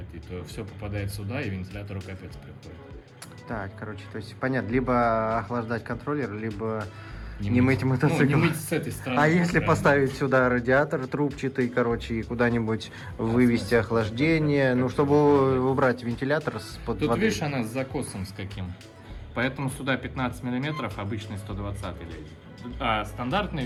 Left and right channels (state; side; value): identical; both; correlation 1.00